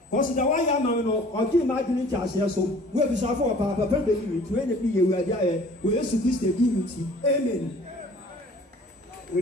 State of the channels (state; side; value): normal; both; correlation 0.50